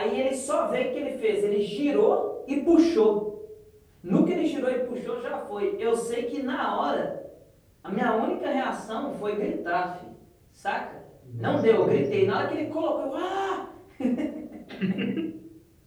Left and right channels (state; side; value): identical; both; correlation 1.00